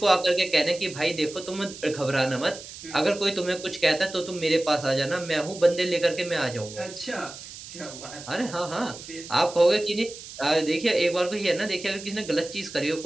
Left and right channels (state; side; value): noise; right; hiss, 14 dB below the sound